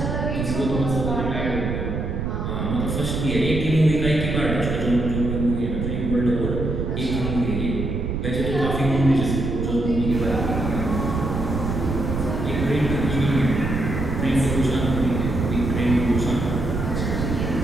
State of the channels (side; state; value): right; noise; rumble, 2 dB below the sound